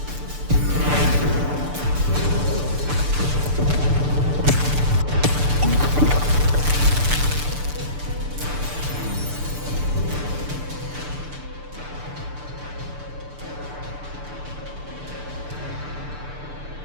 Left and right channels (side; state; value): left; late; 6.8 ms